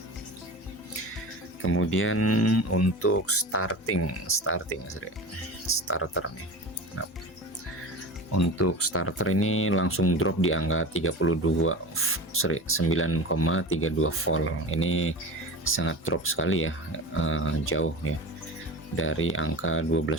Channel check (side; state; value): both; normal; correlation 0.32